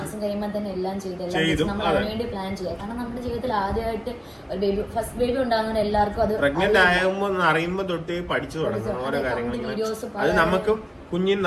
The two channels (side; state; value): both; identical; correlation 1.00